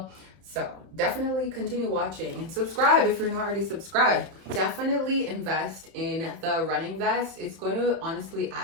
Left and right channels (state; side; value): late; left; 31 ms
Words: So definitely continue watching and subscribe if you're not already subscribed. Definitely invest in the running vest. It's going to honestly